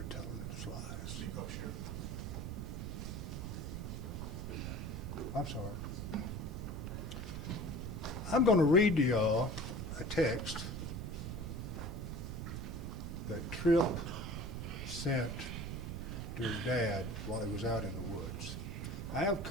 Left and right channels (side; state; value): right; noise; rumble, 5 dB below the sound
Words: telling it lies. I'm sorry. I'm going to read to y'all a text that Trip sent to his dad while he was out in the woods. I have